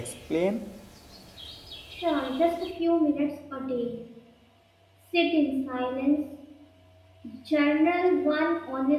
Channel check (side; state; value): both; identical; correlation 1.00